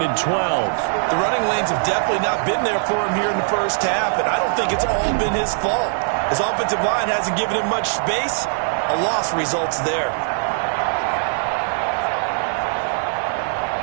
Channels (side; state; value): left; silent; digital silence